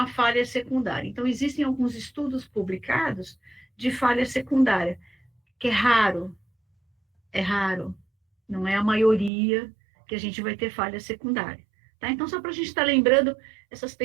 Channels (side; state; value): left; drops out; at 9.3 s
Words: falha secundária. Então, existem alguns estudos publicados de falha secundária, que é raro, não é a maioria que a gente vai ter falha secundária. Tá? Então, só para a gente estar lembrando essas